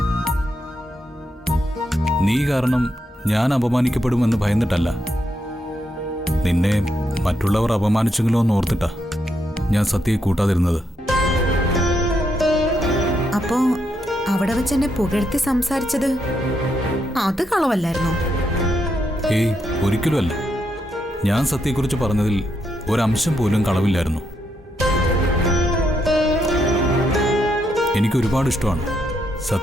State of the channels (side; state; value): both; normal; correlation 0.79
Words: നീ കാരണം ഞാൻ അപമാനിക്കപ്പെടുമെന്ന് ഭയന്നിട്ടല്ല. നിന്നെ മറ്റുള്ളവർ അപമാനിച്ചെങ്കിലോ എന്ന് ഓർത്തിട്ടാ ഞാൻ സത്യയെ കൂട്ടാതിരുന്നത്. അപ്പോ അവിടെ വെച്ച് എന്നെ പുകഴ്ത്തി സംസാരിച്ചത് അത് കളവല്ലായിരുന്നോ? ഏയ്, ഒരിക്കലുമല്ല. ഞാൻ സത്യയെക്കുറിച്ച് പറഞ്ഞതിൽ ഒരംശം പോലും കളവില്ലായിരുന്നു. എനിക്കൊരുപാട് ഇഷ്ടമാണ്